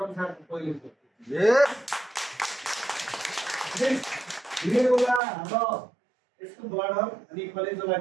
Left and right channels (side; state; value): left; drops out; at 5.2 s